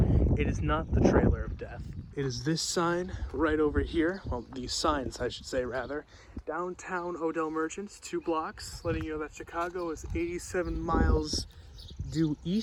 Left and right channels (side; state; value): both; identical; correlation 1.00